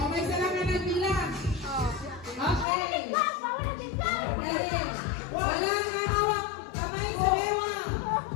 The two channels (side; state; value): right; drops out; at 2.7 s